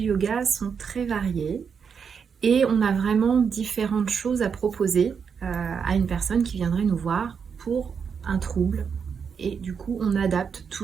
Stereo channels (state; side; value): quieter; left; 6.5 dB